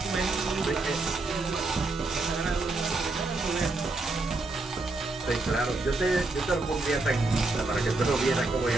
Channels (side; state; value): left; quieter; 3.3 dB